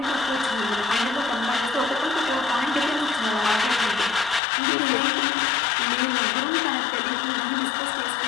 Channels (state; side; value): drops out; right; at 4.4 s